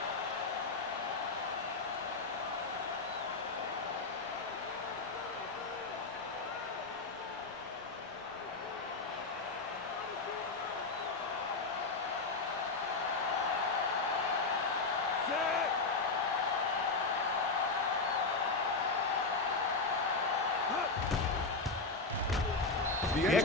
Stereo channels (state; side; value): quieter; right; 3.8 dB